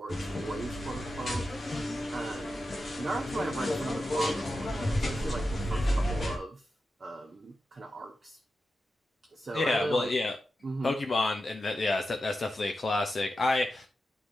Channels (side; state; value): both; normal; correlation 0.90